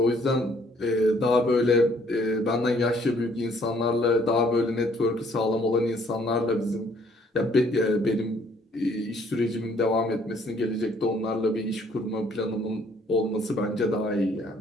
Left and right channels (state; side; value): normal; both; correlation 0.63